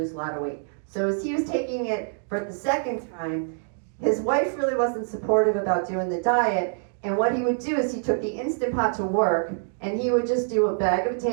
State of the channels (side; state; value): left; silent; digital silence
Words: a lot of weight. So as he was taking it for the second time, his wife really wasn't supportive about doing the diet. And what he would do is he took the Instant Pot to work, and he would just do a bag of